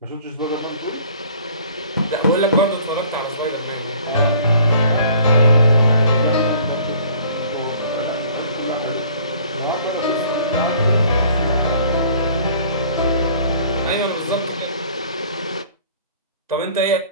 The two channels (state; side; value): inverted; both; correlation -0.53